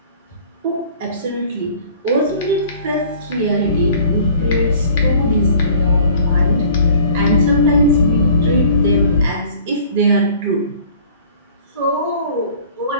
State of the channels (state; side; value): inverted; both; correlation -0.50